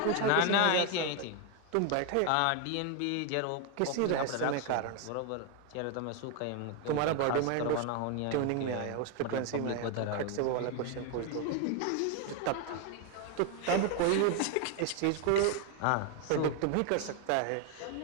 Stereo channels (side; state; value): both; different; correlation 0.01